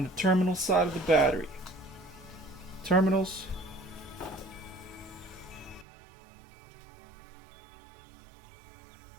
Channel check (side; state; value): left; drops out; at 5.9 s